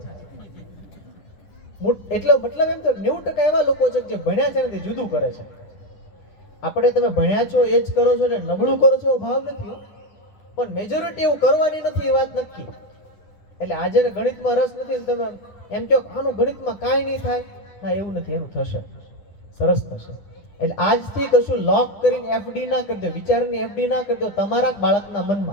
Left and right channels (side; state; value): right; late; 10 ms